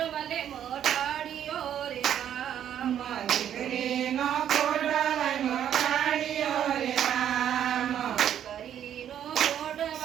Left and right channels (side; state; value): left; quieter; 10.0 dB